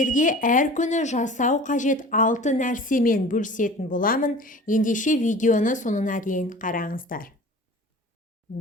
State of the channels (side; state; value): both; normal; correlation 0.41